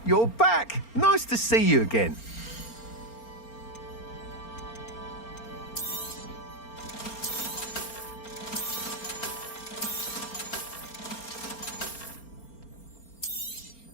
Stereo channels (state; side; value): late; right; 4.4 ms